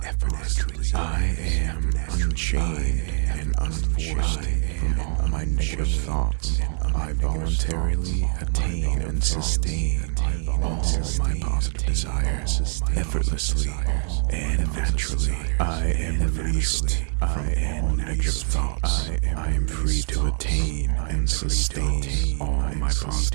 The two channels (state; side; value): silent; left; 63 dB below the other